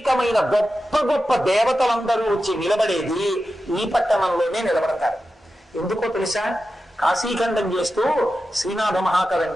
గొప్ప గొప్ప దేవతలందరూ వచ్చి నిలబడేది ఈ పట్టణంలోనే నిలబడతారు. ఎందుకో తెలుసా? కాశీఖండం చేస్తూ శ్రీనాథ మహాకవి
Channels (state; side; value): normal; both; correlation 0.92